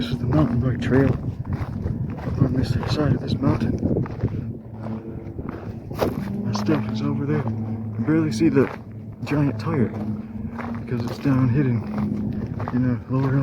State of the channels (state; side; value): identical; both; correlation 1.00